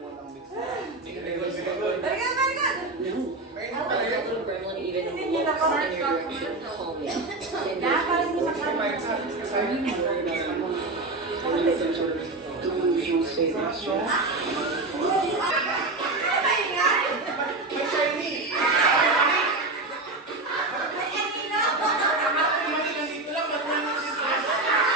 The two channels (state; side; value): quieter; left; 3.2 dB